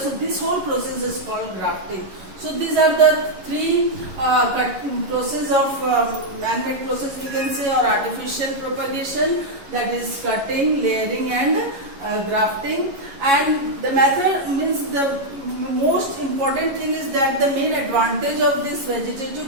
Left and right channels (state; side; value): late; left; 11 ms